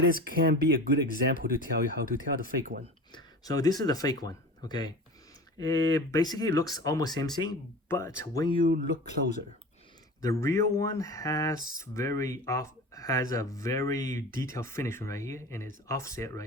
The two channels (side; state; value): both; normal; correlation 0.35